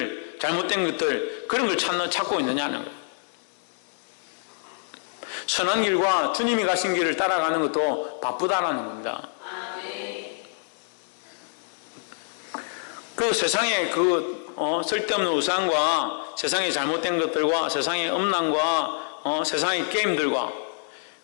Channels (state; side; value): silent; right; digital silence